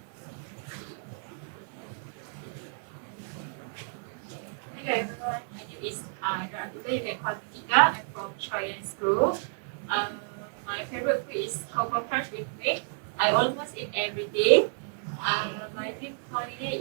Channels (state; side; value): silent; left; 57 dB below the other